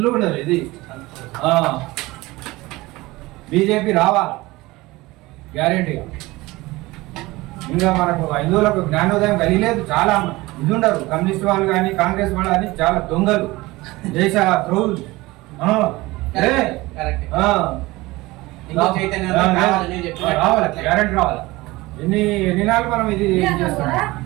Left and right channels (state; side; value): quieter; left; 20.5 dB